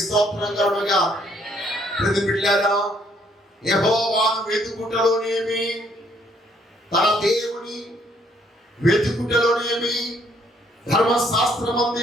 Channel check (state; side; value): normal; both; correlation 0.67